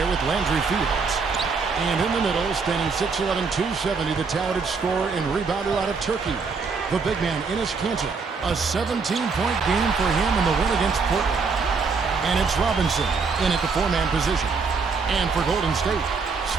with Landry Fields. And in the middle, standing 6'11", 270, the talented scorer and rebounder out of Turkey, the big man, Enes Kanter. A 17-point game for him in the win against Portland. And it's Robinson in at the four-man position. And for Golden State,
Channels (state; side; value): quieter; left; 4.9 dB